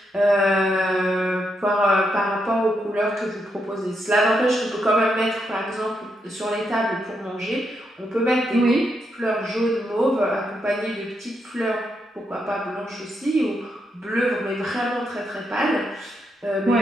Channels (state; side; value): normal; both; correlation 0.81